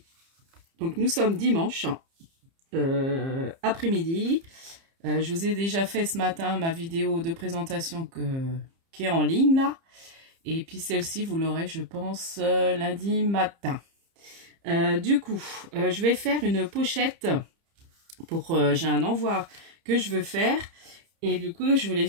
Donc nous sommes dimanche après-midi. Je vous ai déjà fait ce matin ma vidéo de présentation qui est en ligne là. Et puis celle-ci, vous l'aurez, je pense, lundi matin. Du coup, je vais faire une pochette pour... j'ai un envoi que je veux faire. Et du coup, je voulais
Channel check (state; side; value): late; left; 30 ms